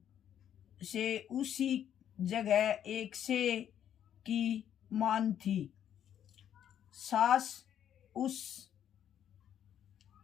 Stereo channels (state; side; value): quieter; right; 9.9 dB